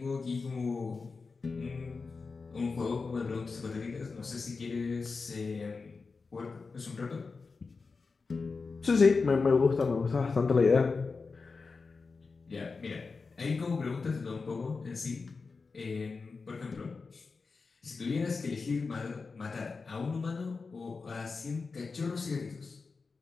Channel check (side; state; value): right; quieter; 4.5 dB